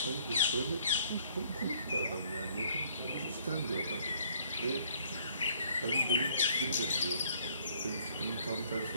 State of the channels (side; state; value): both; inverted; correlation -0.61